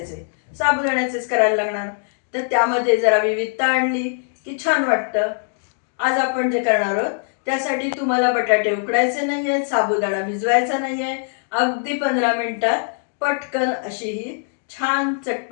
साबुदाण्याचेच करायला लागणार। तर त्यामध्ये जरा विविधता आणली की छान वाटतं। आज आपण जे करणार आहोत त्यासाठी तुम्हाला बटाटे उकडायचे नाहीये, साबुदाणा भिजवायचा नाहीये, अगदी 15 मिनिटात पटकन अशी ही छान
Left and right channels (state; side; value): silent; right; digital silence